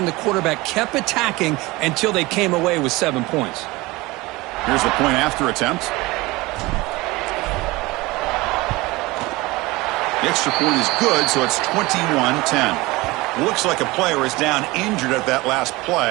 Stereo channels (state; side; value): quieter; left; 21.5 dB